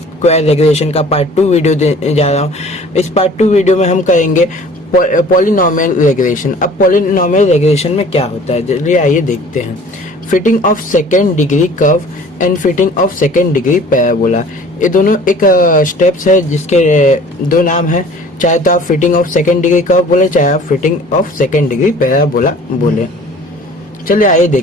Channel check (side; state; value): both; normal; correlation 0.48